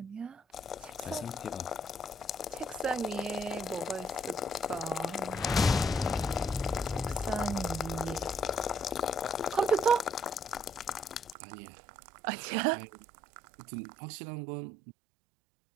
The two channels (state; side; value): drops out; left; at 11.4 s